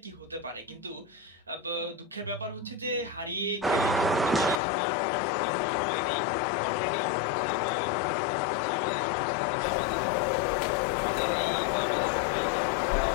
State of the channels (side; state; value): right; drops out; at 4.6 s